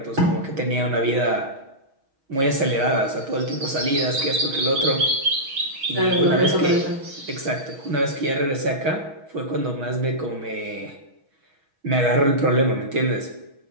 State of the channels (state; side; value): late; left; 6.3 ms